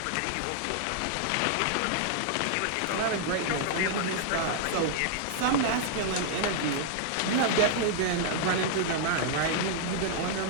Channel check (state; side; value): different; both; correlation -0.01